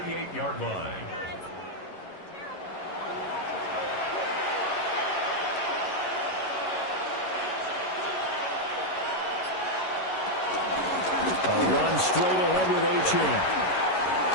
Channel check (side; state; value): right; late; 11 ms